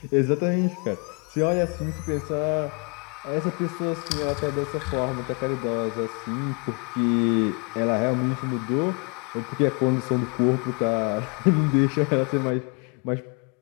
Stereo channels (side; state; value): right; quieter; 35.2 dB